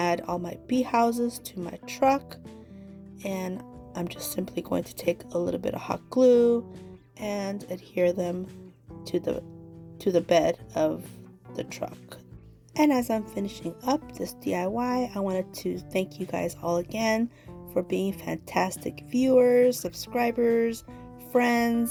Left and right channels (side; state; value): both; identical; correlation 1.00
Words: all my bee houses to my truck, and I'm just simply going to take a little bit of hot glue and adhere them to the bed of the truck. And as I'm finishing up this DIY, I wanted to thank you guys all again for being fantastic viewers, subscribers,